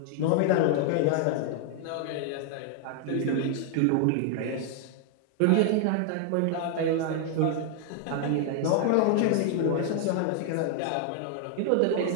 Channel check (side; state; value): both; different; correlation 0.00